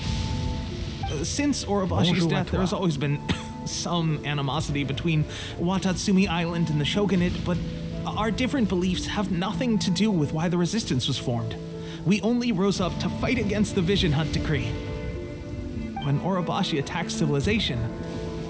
Since Orobashi's death, there has always been some animosity between Watatsumi Island and the Shogunate, but our different beliefs have nothing to do with why the resistance was formed. We only rose up to fight against the Vision Hunt Decree. When Orobashi attacked civilization,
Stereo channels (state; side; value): identical; both; correlation 1.00